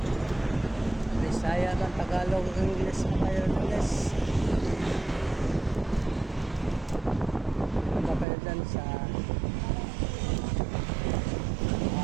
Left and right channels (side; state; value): left; drops out; at 8.2 s